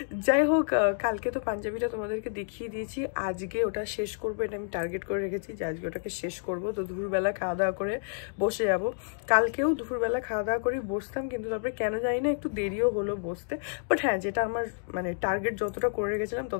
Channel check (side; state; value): right; silent; digital silence